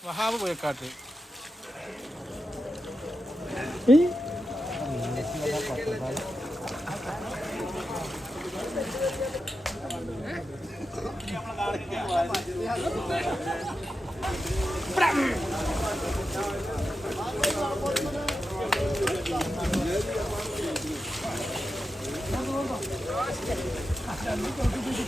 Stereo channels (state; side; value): normal; both; correlation 0.88